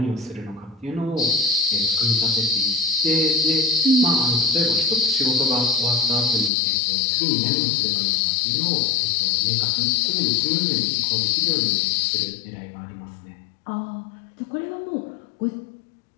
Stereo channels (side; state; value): right; drops out; at 6.5 s